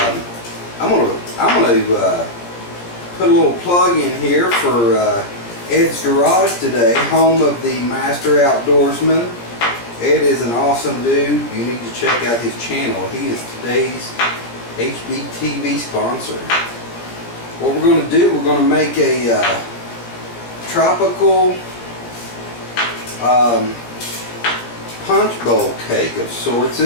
gonna put a little plug in here for Ed's Garage today, home of the Master Outdoorsman. Ed is an awesome dude. You need to check out his channel. He is today's HBTV sponsor. What we're going to do, we're going to make a tropical Punchbowl cake of sorts.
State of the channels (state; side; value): late; right; 17 ms